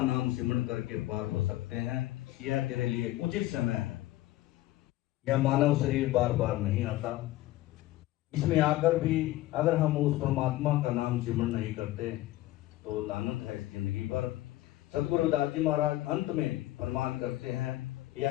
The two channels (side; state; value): right; quieter; 16.4 dB